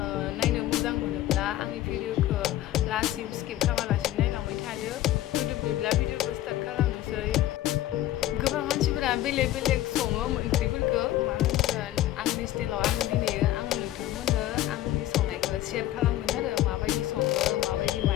नायनो मोजां मोनोब्ला आंनि भिडिअखौ लास्टसिम स्किप खालामालासिनो नायलांबाय थादो. भिडिअखौ स्टार्ट खालामनोसै. गोबां मानसिफोरा बेलेग बेलेग सङो ओंख्रिफोरखौ मा होनगोन आंनि स्टाइलाव आं दिनैयो आङो नोंथांमोननो आंनि संनायखौ शेयार खालामगोन आरो माबायदि सङो माबायदि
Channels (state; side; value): quieter; right; 14.2 dB